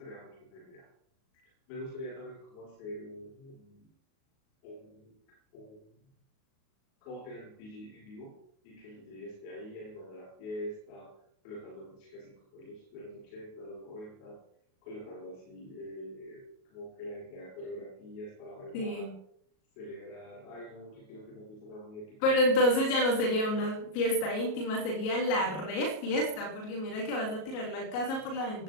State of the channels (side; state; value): right; late; 37 ms